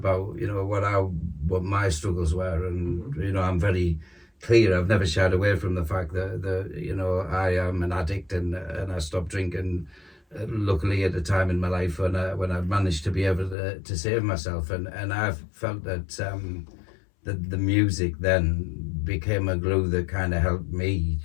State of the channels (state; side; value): drops out; right; at 13.6 s